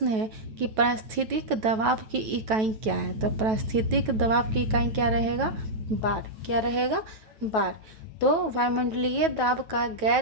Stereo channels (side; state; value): left; late; 9.2 ms